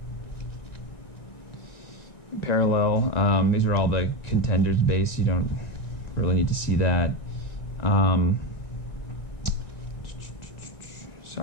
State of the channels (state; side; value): late; right; 1.9 ms